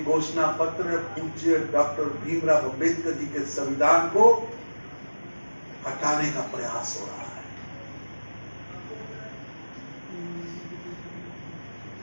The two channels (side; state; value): both; inverted; correlation -1.00